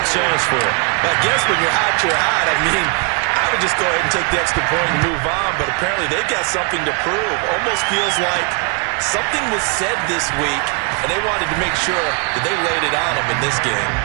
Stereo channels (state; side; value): quieter; left; 33.4 dB